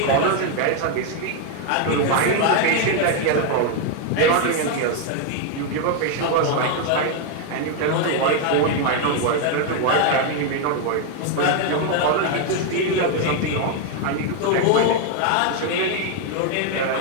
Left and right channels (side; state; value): both; different; correlation 0.01